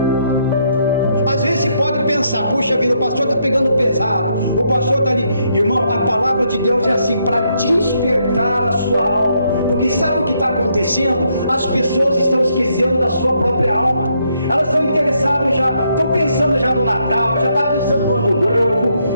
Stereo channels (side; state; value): both; inverted; correlation -0.75